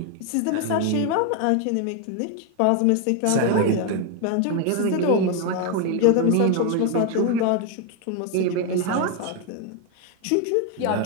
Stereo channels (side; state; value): both; different; correlation 0.01